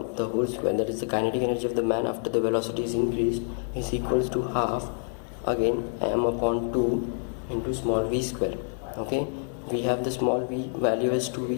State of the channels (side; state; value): right; silent; 59 dB below the other